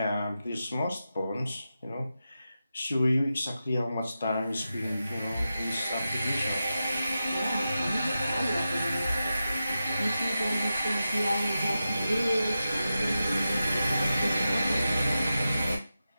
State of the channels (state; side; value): inverted; both; correlation -0.91